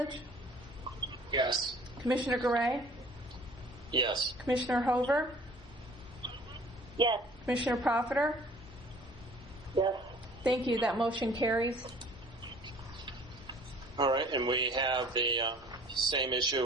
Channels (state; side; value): normal; both; correlation 0.51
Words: Yes. Commissioner Garay? Yes. Commissioner Hover? Yes. Commissioner Profiter? Yes. Thank you. That motion carries. All right, and we have the same